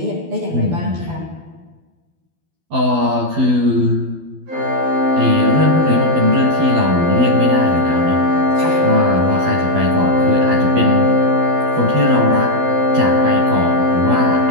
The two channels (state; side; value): late; left; 12 ms